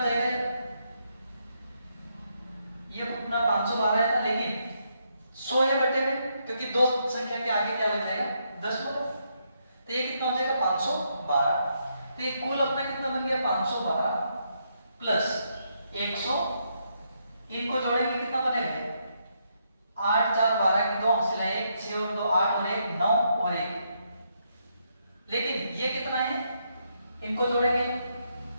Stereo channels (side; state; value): both; inverted; correlation -0.77